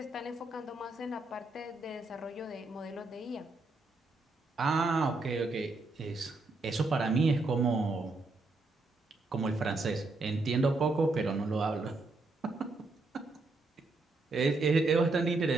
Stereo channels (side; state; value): left; quieter; 3.3 dB